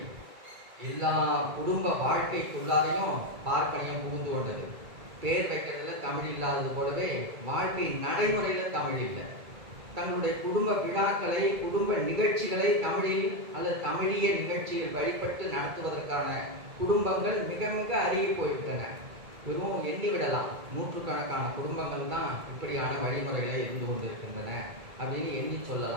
எல்லா குடும்ப வாழ்க்கைக்குள்ளாரையும் பார்ப்பனியம் புகுந்து கொண்டது. பேர் வைக்கிறதுல தமிழ் இல்லாதது போலவே வாழ்க்கை நடைமுறையில தமிழ் இல்லை. தங்களுடைய குடும்ப விழாக்களை, குடும்ப நிகழ்ச்சிகளை தமிழில் அல்லது தமிழிய நிகழ்ச்சியில் வழிபட்டு நடத்துவதற்கான குடும்பங்கள் மிக மிக அருகி போய்விட்டன. வெறும் எண்ணிவிடலாம், நூற்றுக்கணக்கான குடும்பங்கள் தான் இப்படியான வழிமுறைகளை இருந்து கொண்டிருக்கின்றன அப்படின்னு எண்ணி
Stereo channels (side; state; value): left; late; 2.3 ms